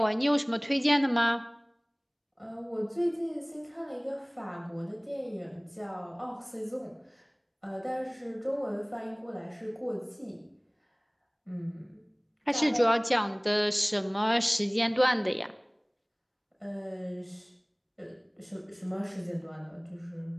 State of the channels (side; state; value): both; identical; correlation 1.00